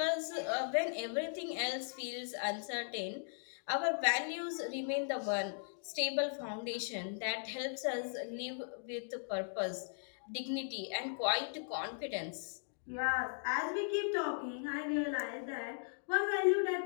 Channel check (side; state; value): right; silent; digital silence